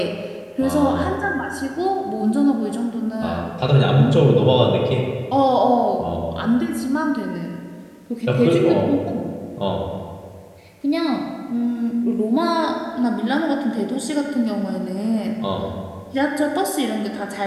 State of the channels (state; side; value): identical; both; correlation 1.00